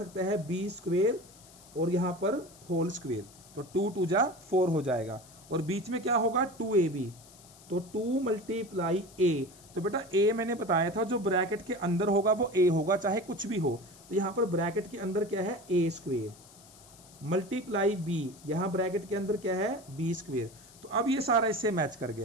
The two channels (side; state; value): left; noise; hiss, 23 dB below the sound